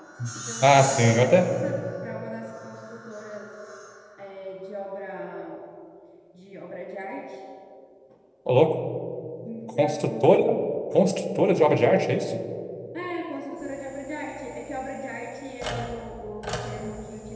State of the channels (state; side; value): identical; both; correlation 1.00